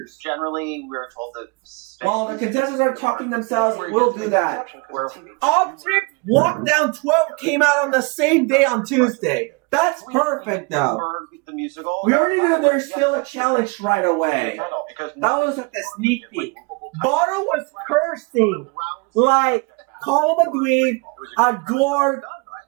Generally, we're told that while the contestants are talking themselves, we'll do that. Object Lockdown 12 came out on the same day on Tuesday. That's perfect, though. We already knew there's still a challenge right away. That was like a sneak peek. Bottle was cursing. Like, call him a dweeb, a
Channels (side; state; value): left; quieter; 29.7 dB